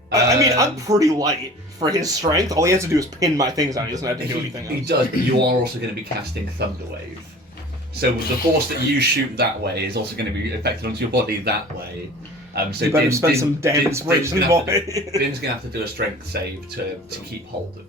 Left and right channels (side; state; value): both; normal; correlation 0.43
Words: I mean, I'm pretty light for his strength. All he has to do is pin my things down. He doesn't have to do anything He else. does, but you are also going to be casting Thunderwave. So the force that you shoot that way is also going to be affected onto your body that way. So You better spend some damn inspiration, boy. Din's going to have to do a strength save to keep hold